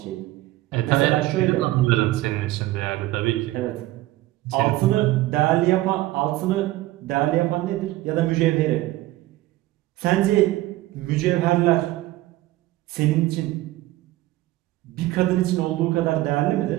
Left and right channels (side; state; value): left; quieter; 17.0 dB